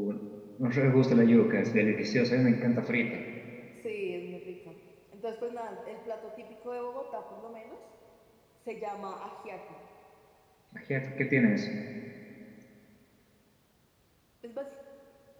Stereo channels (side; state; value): both; identical; correlation 1.00